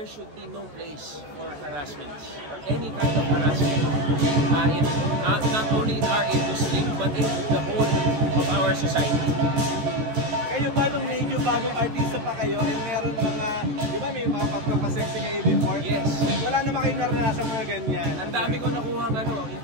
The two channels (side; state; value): left; late; 14 ms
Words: should be no place for harassment, or any kind of harassment, not only in our industry, but in the whole of our society. Kayo ba nung medyo bagong artista pa kayo, ay meron mga, di ba may mga pagpapasexy kayo before? Yes. Wala naman kayo naranasan mga ganyan. Ang dami ko nakuha